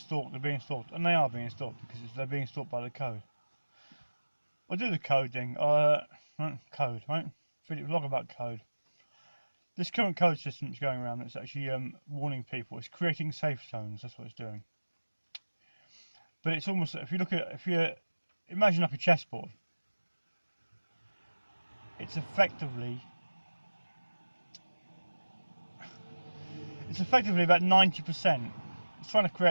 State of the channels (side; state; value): both; inverted; correlation -1.00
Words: and they are being stalked because they're being stalked by the code. I'll do the coding, code, right? Vlog about code. This current code system that's going around that's actually warning people. It's creating safe zones. That's what it's doing. But it's almost, if you imagine like a chessboard, it's effectively about 90%. It's trying to